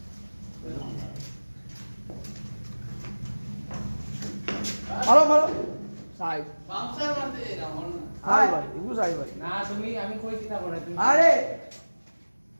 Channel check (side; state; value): both; inverted; correlation -1.00